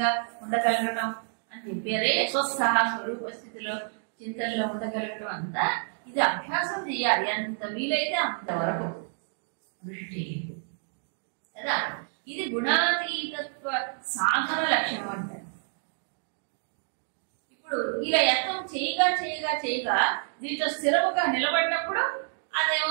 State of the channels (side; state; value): left; silent; digital silence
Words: ఉండగలగడం అని చెప్పారే, స్వస్థ స్వరూప స్థితిలో చింతనలో ఉండగలగడం అంతా ఇది అభ్యాసం చేయాలి. ఎంత వీలైతే అంతవరకు దృష్టి కదా. ఇది గుణాతీతత్వ సాధన లక్ష్యం అంటారు. ఇప్పుడు ఇలా యత్నం చేయగా దీంట్లో స్థిరముగా నిలబడినప్పుడు